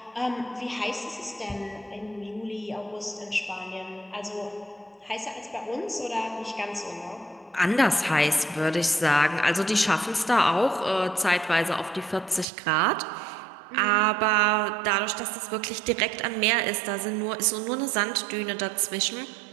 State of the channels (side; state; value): left; drops out; at 12.5 s